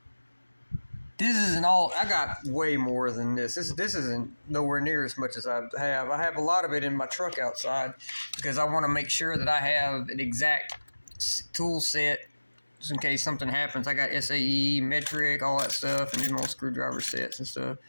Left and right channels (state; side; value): inverted; both; correlation -1.00